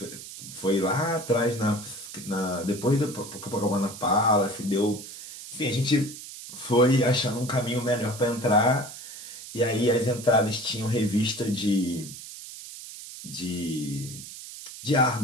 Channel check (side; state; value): right; noise; hiss, 13 dB below the sound